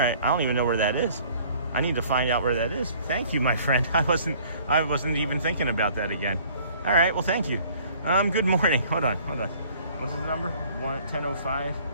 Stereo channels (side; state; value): both; inverted; correlation -0.54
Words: I don't even know where that is. I need to find out where that is. Thank you, my friend. I wasn't even thinking about that again. All right. Well, thank you. Good morning. Hold on. What's his number? 10:05.